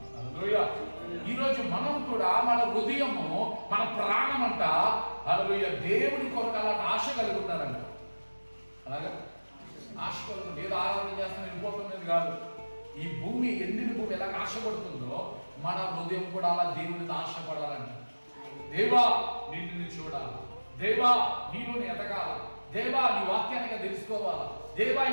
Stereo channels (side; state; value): both; inverted; correlation -1.00